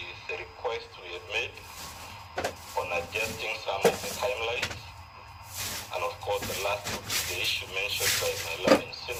the request we have made on adjusting some of the timelines. And of course, the last will be the issue mentioned by my learning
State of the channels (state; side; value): identical; both; correlation 1.00